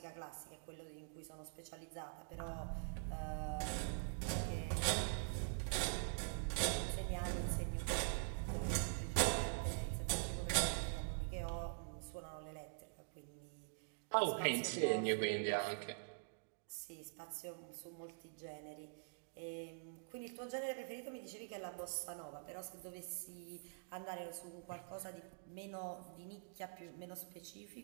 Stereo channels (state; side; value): silent; left; digital silence